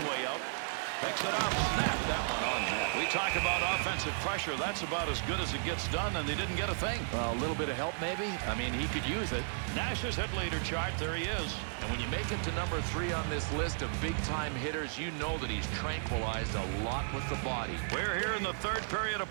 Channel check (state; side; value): silent; left; digital silence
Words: way out. Picks it up. Snap that one on net. We talk about offensive pressure. That's about as good as it gets done, and they didn't get a thing. Well, a little bit of help, maybe. I mean, he could use it. Nash's hit leader chart. There he is. And when you make it to number 3 on this list of big-time hitters, you know that he's tranquilized a lot with the body. We're here in the third period of